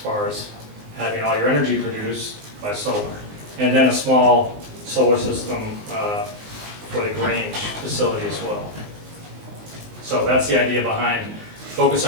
as having all your energy produced by solar. And then a small solar system for the Grange facility as well. So that's the idea behind focus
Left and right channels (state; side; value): late; left; 19 ms